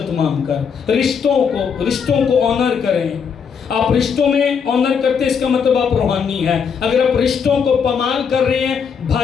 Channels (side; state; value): right; quieter; 6.6 dB